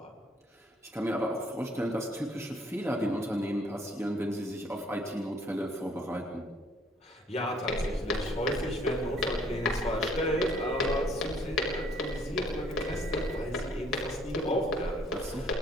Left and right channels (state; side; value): normal; both; correlation 0.62